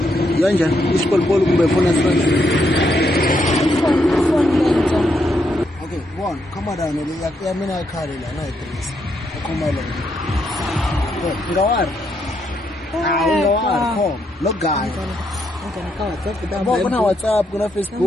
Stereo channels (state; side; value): normal; both; correlation 0.78